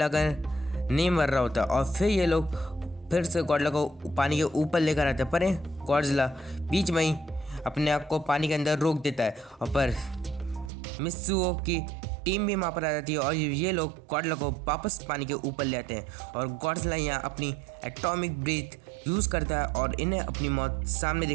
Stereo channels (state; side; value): drops out; left; at 10.7 s